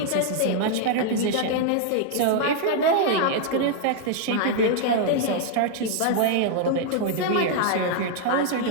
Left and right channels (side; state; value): both; different; correlation 0.00